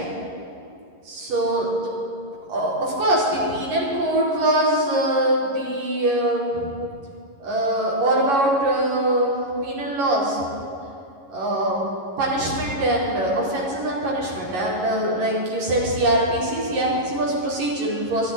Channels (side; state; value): left; late; 11 ms